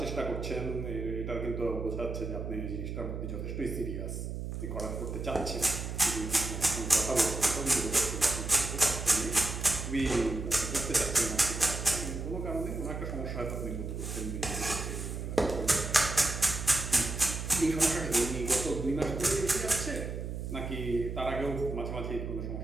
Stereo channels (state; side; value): noise; right; hum, 5 dB below the sound